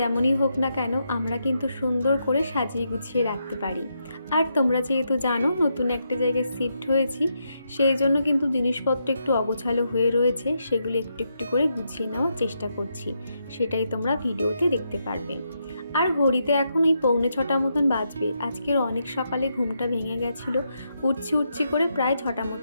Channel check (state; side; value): inverted; both; correlation -0.81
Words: হোক না কেন, আমরা কিন্তু সুন্দর করে সাজিয়ে গুছিয়ে রাখতে পারি। আর তোমরা যেহেতু জানো নতুন একটা জায়গায় শিফট হয়েছি, সেই জন্য কিন্তু জিনিসপত্র একটু অগোছালো হয়ে রয়েছে, সেগুলো একটু একটু করে গুছিয়ে নেওয়ার চেষ্টা করছি। সেটাই তোমরা ভিডিওতে দেখতে পারবে। আর ঘড়িতে এখন এই 6:45 মতন বাজবে। আজকের অনেক সকালে ঘুমটা ভেঙে গেছিলো, উঠছি করে প্রায় 6টা